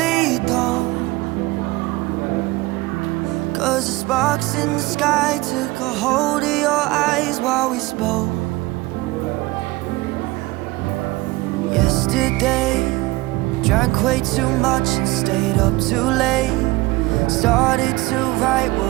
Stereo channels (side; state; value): left; quieter; 20.7 dB